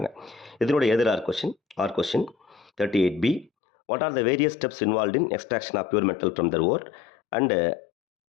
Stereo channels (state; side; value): drops out; right; at 3.5 s